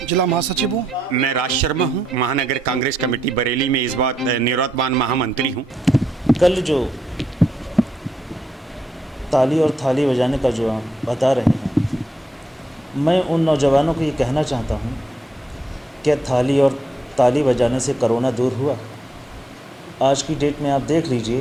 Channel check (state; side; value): normal; both; correlation 0.79